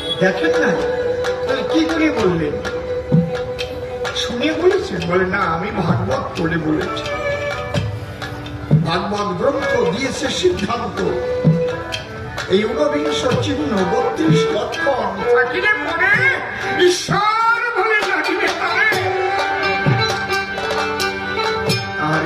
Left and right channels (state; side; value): identical; both; correlation 1.00